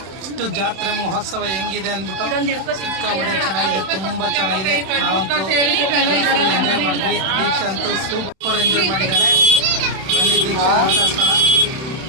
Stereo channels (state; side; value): late; left; 31 ms